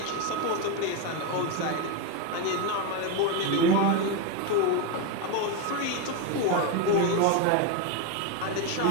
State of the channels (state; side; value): different; both; correlation 0.03